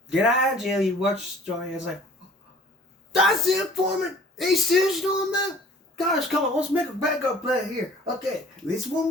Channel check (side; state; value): both; normal; correlation 0.50